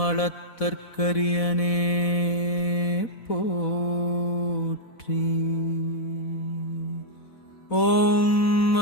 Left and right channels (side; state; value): right; late; 4.1 ms